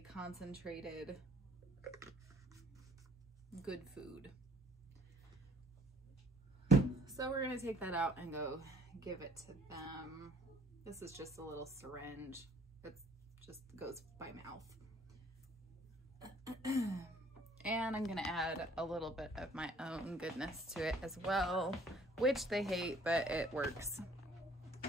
concentrated good food. So we're gonna take that out and go give it to them. This is just a little syringe. It just goes by mouth. And I'm gonna add a little bit of my own goodness to it as well, which they hate, but it works.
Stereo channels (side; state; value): both; normal; correlation 0.58